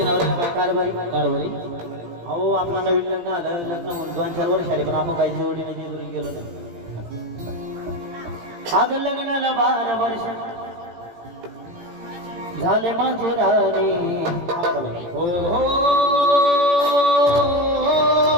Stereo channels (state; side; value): late; left; 18 ms